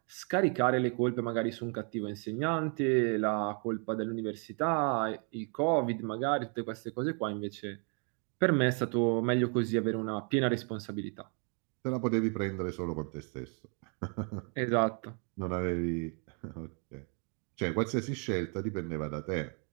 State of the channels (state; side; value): quieter; left; 39.4 dB